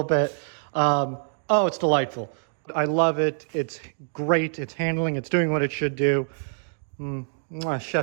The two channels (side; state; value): left; silent; digital silence